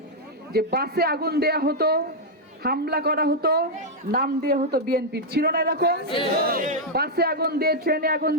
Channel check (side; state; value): both; normal; correlation -0.03